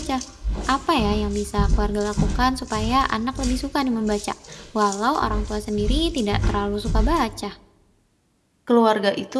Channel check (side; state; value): both; identical; correlation 1.00